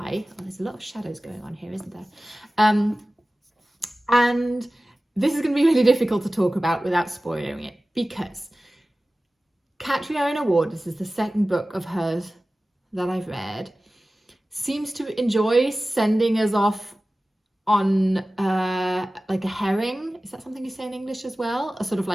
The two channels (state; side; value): normal; both; correlation 0.96